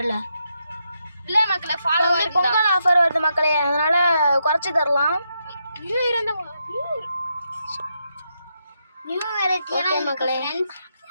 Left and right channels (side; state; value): both; inverted; correlation -0.82